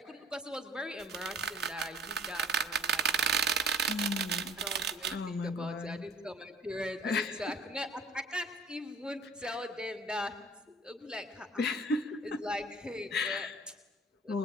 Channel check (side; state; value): both; normal; correlation 0.52